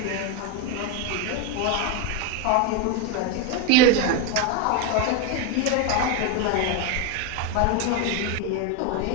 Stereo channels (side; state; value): both; different; correlation 0.02